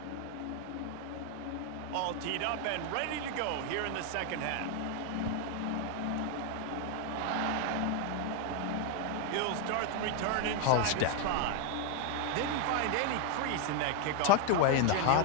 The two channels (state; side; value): different; both; correlation 0.01